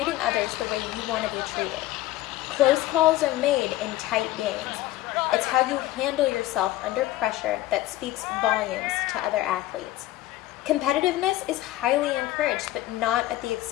others the way you want to be treated. Close calls are made in tight games. It's how you handle yourself under pressure that speaks volumes to other athletes. Competitiveness is highly encouraged, but not at the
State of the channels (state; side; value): quieter; right; 15.7 dB